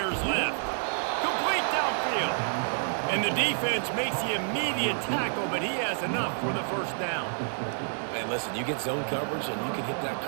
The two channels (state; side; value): silent; left; 59 dB below the other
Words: left. Complete downfield. And the defense makes the immediate tackle, but he has enough for the first down. Man, listen, you get zone coverage and you can hit that